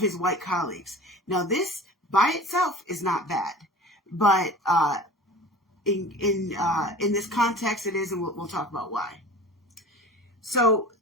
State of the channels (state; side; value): normal; both; correlation 0.39